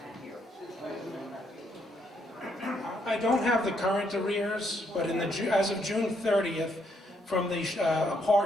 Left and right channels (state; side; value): normal; both; correlation 0.74